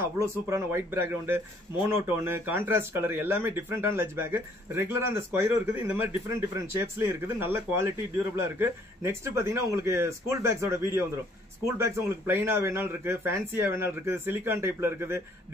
அவ்வளவு சூப்பரான white background, monotone, contrast colour, எல்லாமே டிஃபரெண்டான லஞ்ச் பேக். ரெகுலரா அந்த ஸ்கொயரும் இருக்குது, இந்த மாதிரி டிஃபரெண்ட் ஷேப்ஸ்லயும் இருக்குது. நல்ல குவாலிட்டி, டியூரபிளா இருக்கு. நெக்ஸ்ட் பாத்தீங்கன்னா உங்களுக்கு ஸ்கூல் பேக்ஸோட வீடியோ வந்துடும். ஸ்கூல் பேக்ஸ் உங்களுக்கு பிளைனா வேணாலும் இருக்கு, ஃபேன்சியா வேணாலும் இருக்குது, சிலிகான் டைப்ல இருக்குது,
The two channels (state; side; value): normal; both; correlation 0.63